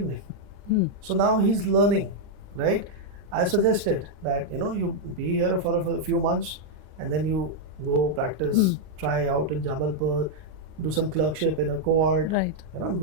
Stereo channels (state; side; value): late; left; 39 ms